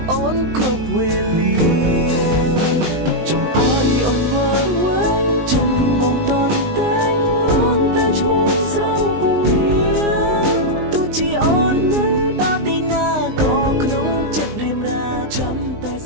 អូនគ្រប់វេលាចង់ឲ្យអូនវល់វែងចិនបងតន់តែងរងតែឈ្មោះស្រង់ពងងារទោះជាអូននៅដល់ទីណាក៏ក្នុងចិត្តរៀមរាចាំតែ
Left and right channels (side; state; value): left; late; 19 ms